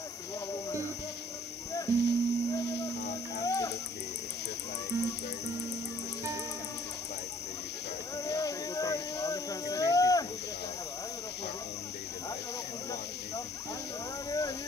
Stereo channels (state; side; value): normal; both; correlation 0.58